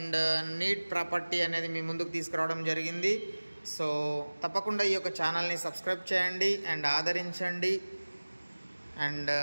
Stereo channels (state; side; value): inverted; both; correlation -1.00